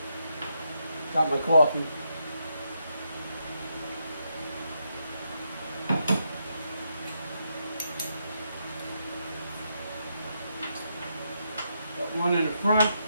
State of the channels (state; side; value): inverted; both; correlation -0.80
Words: Got my coffee. Got one in the front.